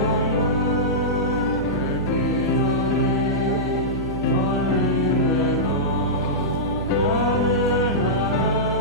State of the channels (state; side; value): noise; right; hum, 7 dB below the sound